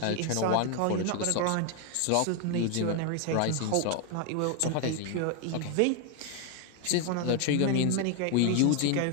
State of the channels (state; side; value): different; both; correlation 0.01